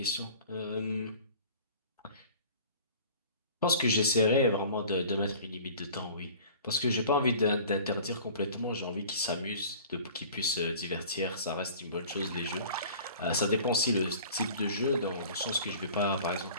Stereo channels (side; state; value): both; inverted; correlation -0.45